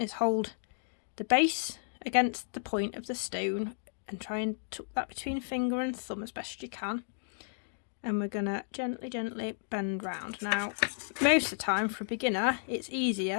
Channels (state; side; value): silent; right; digital silence